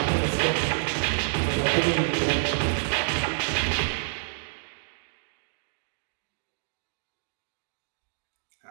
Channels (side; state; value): left; silent; digital silence